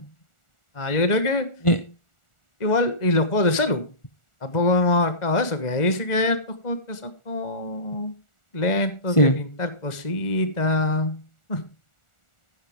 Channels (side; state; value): right; late; 1.4 ms